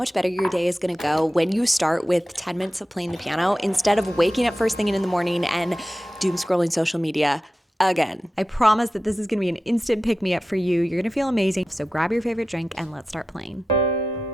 better your day is gonna go when you start with 10 minutes of playing the piano instead of waking up first thing in the morning and doom scrolling social media again. I promise that this is gonna be an instant pick-me-up for you. You're gonna feel amazing. So grab your favorite drink and let's start playing.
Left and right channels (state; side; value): normal; both; correlation 0.93